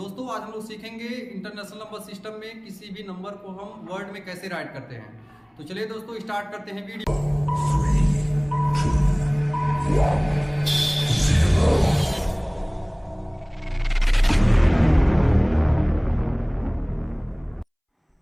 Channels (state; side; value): identical; both; correlation 1.00